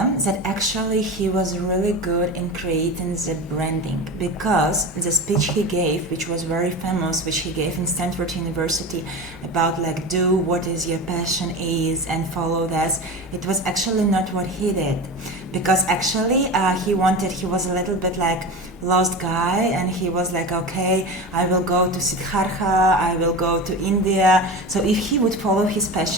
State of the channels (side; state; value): both; normal; correlation 0.27